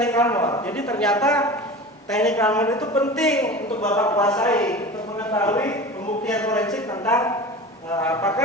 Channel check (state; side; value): normal; both; correlation 0.34